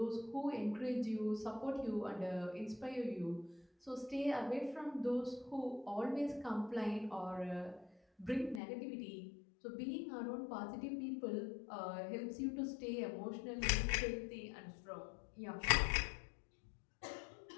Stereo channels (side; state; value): right; drops out; at 8.6 s